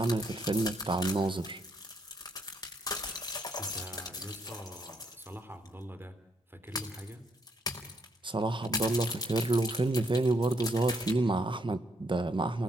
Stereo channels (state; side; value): normal; both; correlation 0.73